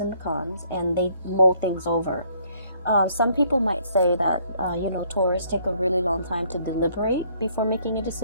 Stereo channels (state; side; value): inverted; both; correlation -0.64